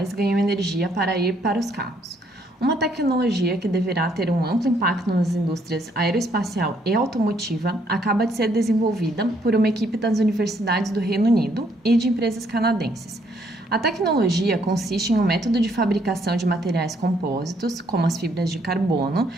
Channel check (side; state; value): both; normal; correlation 0.69